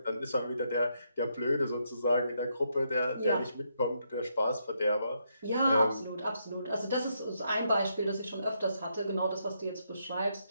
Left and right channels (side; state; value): both; inverted; correlation -0.78